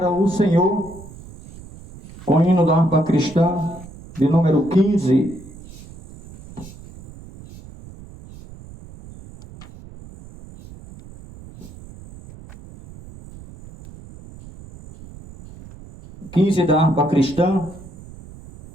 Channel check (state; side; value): noise; right; rumble, 18 dB below the sound